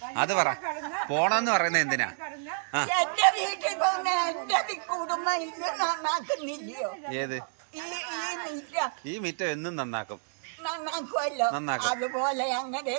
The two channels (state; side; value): silent; left; digital silence